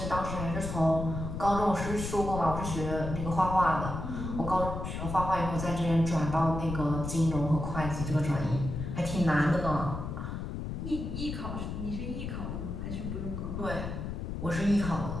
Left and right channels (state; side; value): noise; left; rumble, 5 dB below the sound